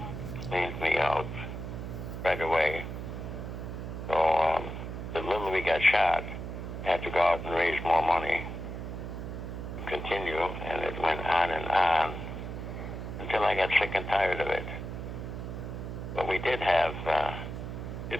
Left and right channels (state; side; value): noise; right; hum, 7 dB below the sound